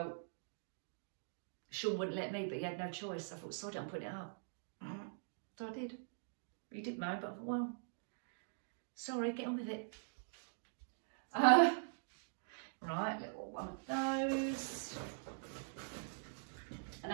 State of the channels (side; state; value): left; silent; digital silence